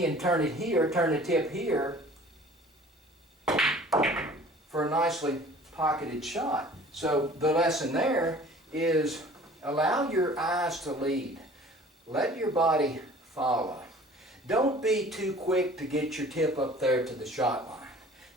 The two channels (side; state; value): both; normal; correlation 0.48